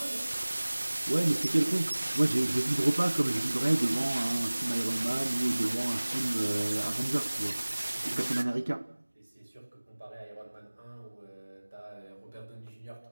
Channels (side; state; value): both; inverted; correlation -1.00